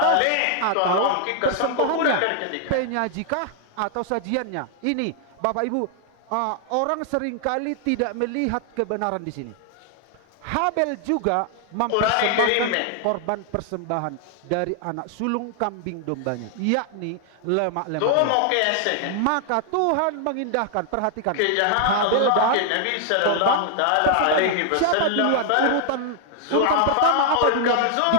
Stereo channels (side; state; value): both; different; correlation 0.00